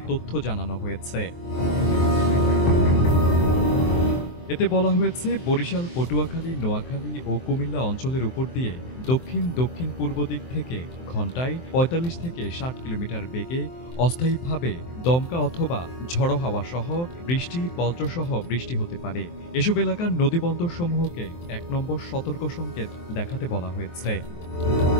তথ্য জানানো হয়েছে। এতে বলা হয়েছে, বরিশাল, পটুয়াখালী, নোয়াখালী ও কুমিল্লা অঞ্চলের উপর দিয়ে দক্ষিণ পূর্ব দিক থেকে ঘন্টায় ৪৫ থেকে ৬০ কিলোমিটার বেগে অস্থায়ীভাবে দমকা অথবা ঝড়ো হাওয়া সহ বৃষ্টি, বজ্রসহ বৃষ্টি হতে পারে। এসব এলাকার নদীবন্দরসমূহকে ১ নম্বর সতর্ক সংকেত দেখাতে বলা হয়েছে।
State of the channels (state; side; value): late; right; 23 ms